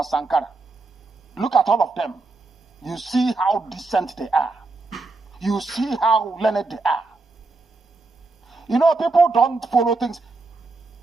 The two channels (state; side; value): quieter; left; 3.5 dB